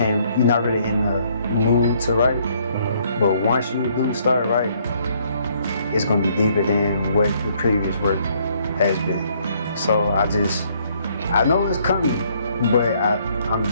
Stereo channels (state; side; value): inverted; both; correlation -0.66